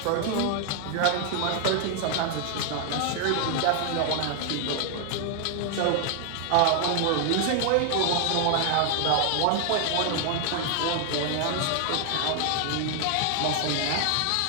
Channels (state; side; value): different; both; correlation 0.00